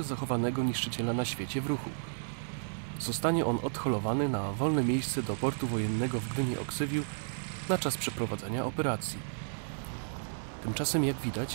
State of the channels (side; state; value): left; silent; digital silence